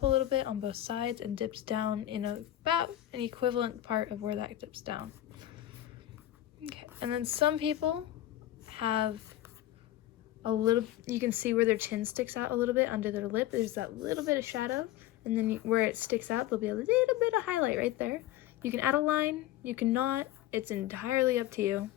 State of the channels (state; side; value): quieter; right; 13.7 dB